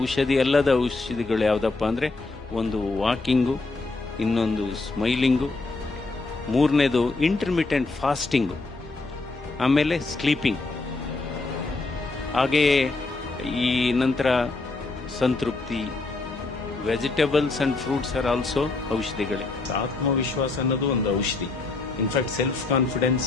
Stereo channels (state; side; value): quieter; right; 3.5 dB